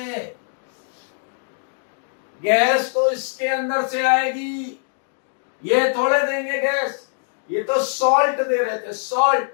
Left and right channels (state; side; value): silent; right; digital silence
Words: गैस तो इसके अंदर से आएगी, ये थोड़े देंगे गैस, ये तो सॉल्ट दे रहे थे, सॉल्ट।